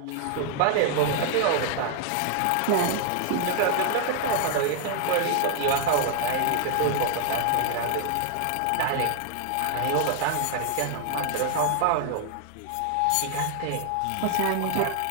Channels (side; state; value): both; different; correlation 0.00